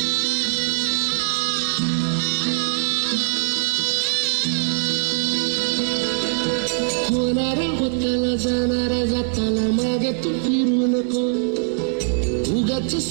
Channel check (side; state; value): left; silent; 64 dB below the other